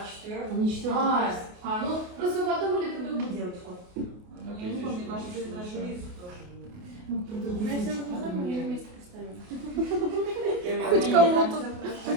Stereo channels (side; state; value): left; late; 28 ms